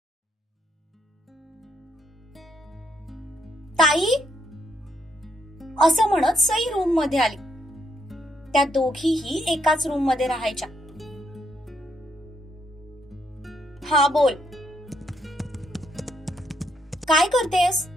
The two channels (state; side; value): normal; both; correlation 0.75